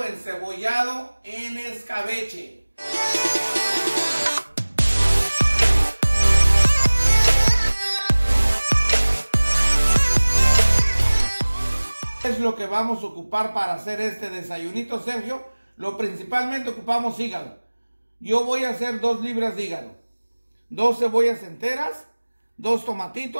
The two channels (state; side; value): inverted; both; correlation -1.00